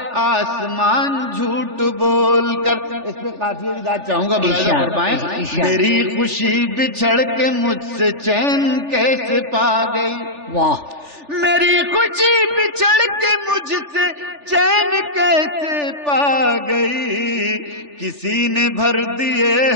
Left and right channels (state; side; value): late; left; 3.4 ms